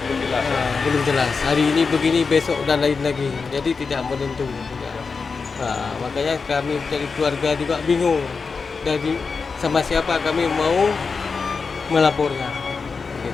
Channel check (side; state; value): right; quieter; 4.9 dB